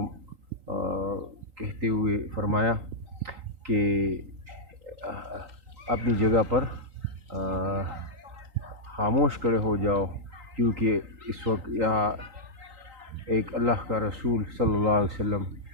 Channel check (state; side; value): late; left; 3.8 ms